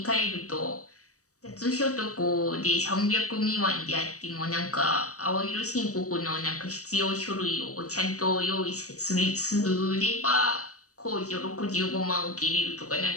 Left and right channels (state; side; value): late; right; 0.66 ms